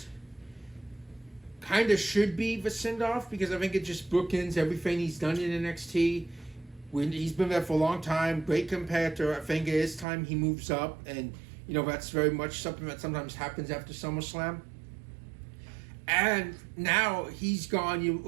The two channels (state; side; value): drops out; left; at 10.1 s